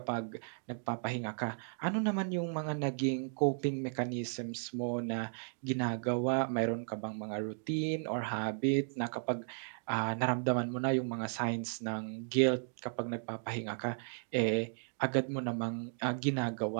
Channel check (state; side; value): silent; left; digital silence